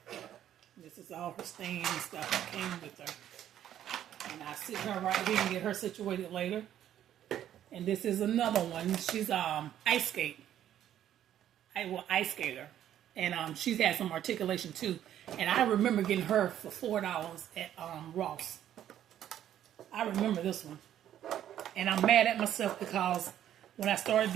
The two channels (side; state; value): left; quieter; 11.1 dB